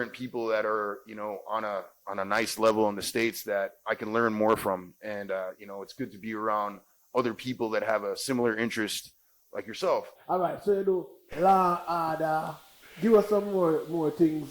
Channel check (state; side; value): identical; both; correlation 1.00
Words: people that are, on a nice level in the States that I can learn more from. And, it's good to be around other people that have a similar interest like yourself. All right. So you do Law and Order. Give us some more